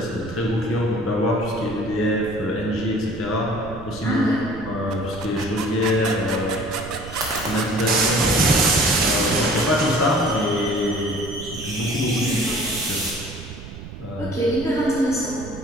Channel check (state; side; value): noise; right; rumble, 13 dB below the sound